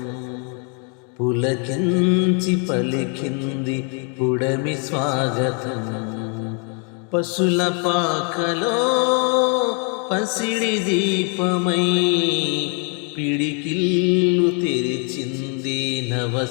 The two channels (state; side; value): quieter; right; 38.4 dB